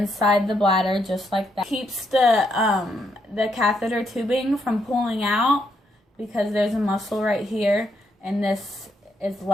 the bladder just like that. Keeps the catheter tubing from pulling out, because there's a muscle right here, and this is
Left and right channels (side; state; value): both; normal; correlation 0.77